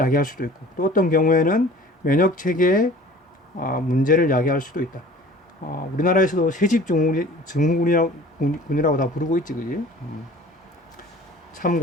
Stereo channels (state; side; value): normal; both; correlation 0.46